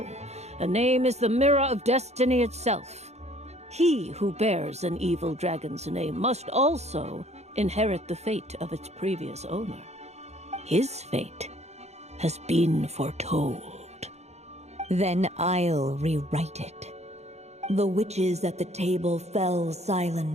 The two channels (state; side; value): late; left; 0.32 ms